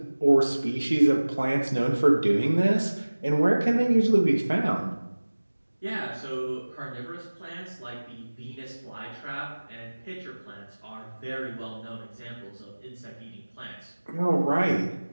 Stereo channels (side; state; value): both; inverted; correlation -1.00